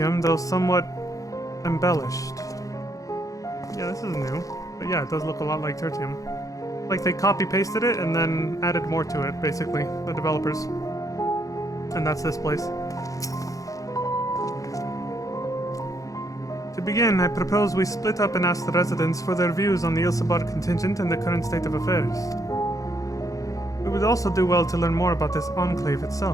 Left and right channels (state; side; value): late; right; 0.16 ms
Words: though somewhat embellished. Yeah, this is new. But yeah, it does look a lot like Tertium. Like they copy-pasted it and then added more to it, basically, the developers. And that's this place. To begin, I propose we split up and ask the residents for their views on the Ilsabard contingent and the current state of affairs. We would also do well to learn more about this enclave